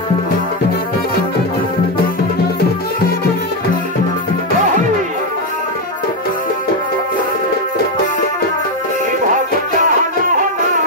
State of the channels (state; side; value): normal; both; correlation 0.06